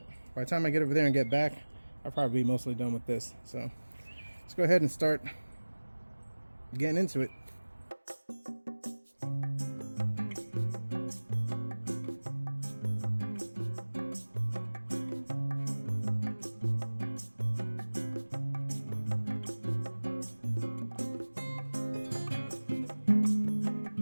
by the time I get over there and get back, I'll probably be mostly done with this. So let's go ahead and start getting into it.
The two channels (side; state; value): both; inverted; correlation -1.00